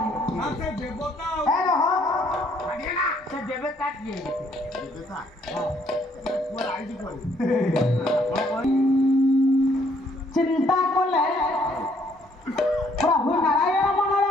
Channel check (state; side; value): normal; both; correlation 0.67